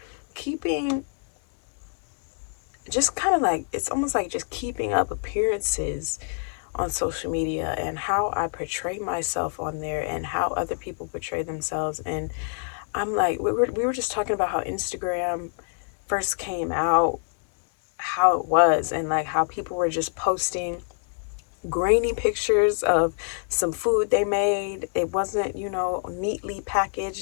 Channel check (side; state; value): right; silent; 57 dB below the other